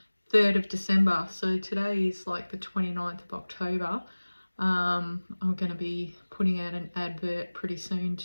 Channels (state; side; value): inverted; both; correlation -1.00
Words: 3rd of December. So today is like the 29th of October. I'm going to be putting out an advert pretty soon